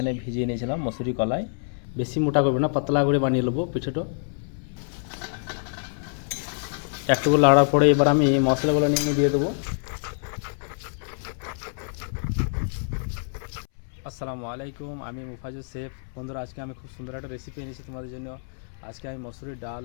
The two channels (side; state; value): right; silent; 61 dB below the other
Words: ভিজিয়ে নিয়েছিলাম মসুরি কলাই। বেশি মোটা করবে না, পাতলা করে বানিয়ে নেবো পিঠেটা। একটু লাড়ার পরে এবার আমি মশলাগুলো নিয়ে দিয়ে দেবো। আসসালামু আলাইকুম, আমি মুফাজুল শেফ। বন্ধুরা, আজকে আমি খুব সুন্দর একটা রেসিপি এনেছি তোমাদের জন্য। আজকে আমি মসুরির ডাল